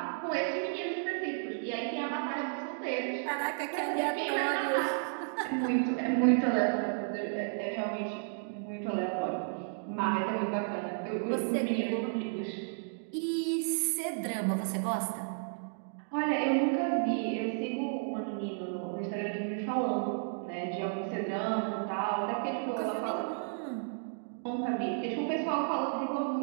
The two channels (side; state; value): left; silent; digital silence